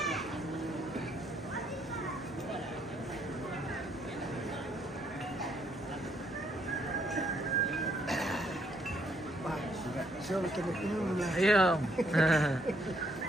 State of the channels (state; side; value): normal; both; correlation 0.70